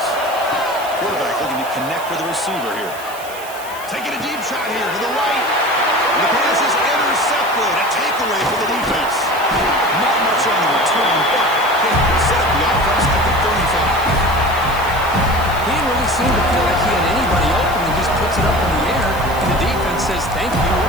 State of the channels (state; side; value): noise; right; hiss, 16 dB below the sound